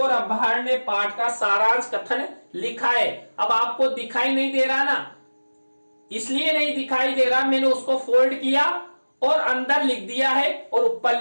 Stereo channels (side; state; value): both; inverted; correlation -1.00